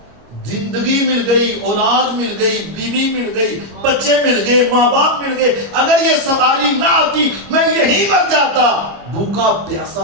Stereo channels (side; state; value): left; late; 26 ms